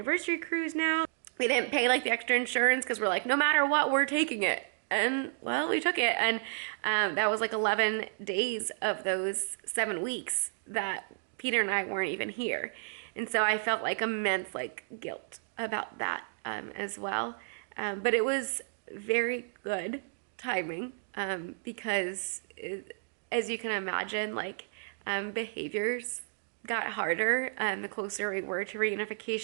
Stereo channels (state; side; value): silent; left; digital silence